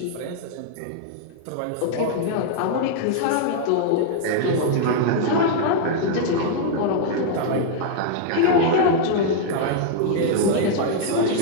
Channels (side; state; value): both; different; correlation -0.01